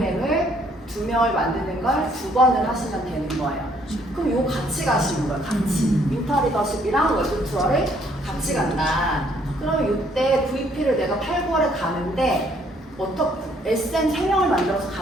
2명을 만드는 걸 2번을 하시면 되는 거예요. 그럼 요 같이 가시는 거예요. 같이. 윈터 리더십이랑 월드 투어를 같이 간다. 그러면 이때 VP를 내가 8, 9월에 가는데 SM 3명을 만들어서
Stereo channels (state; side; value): normal; both; correlation 0.65